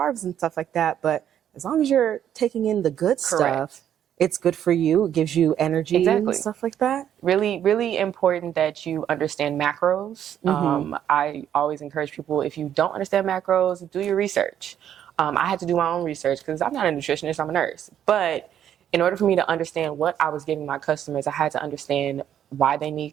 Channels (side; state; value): left; quieter; 10.0 dB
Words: and stuff like that. But as long as you're taking in the good stuff, it's good for you. It gives you energy and stuff like that. Really, really important that you understand macros. I always encourage people, if you don't understand macros, do your research. I had to do my own research because I'm not a nutritionist, I'm a nurse. But in order for me to understand what I was giving my customers, I had to understand why they